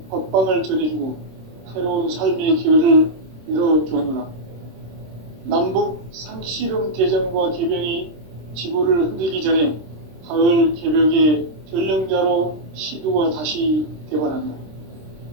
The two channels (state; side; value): late; left; 26 ms